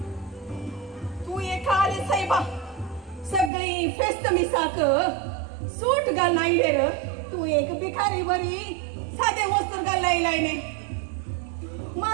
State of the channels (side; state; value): left; drops out; at 3.5 s